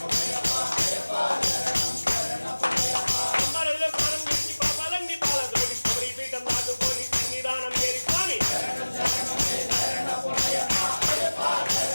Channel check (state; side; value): inverted; both; correlation -1.00